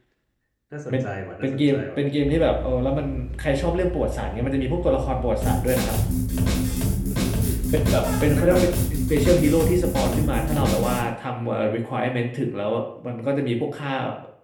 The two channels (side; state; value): both; identical; correlation 1.00